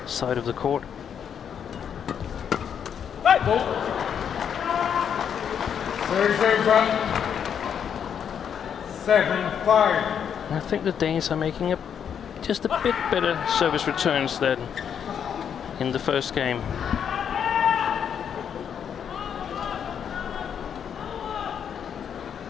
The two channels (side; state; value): right; quieter; 8.1 dB